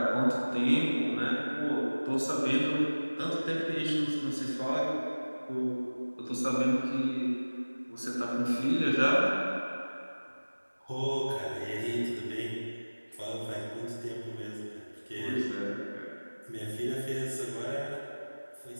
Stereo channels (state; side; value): inverted; both; correlation -1.00